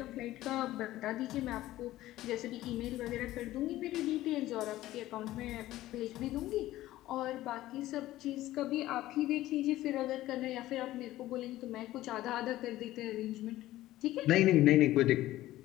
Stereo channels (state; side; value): quieter; right; 15.5 dB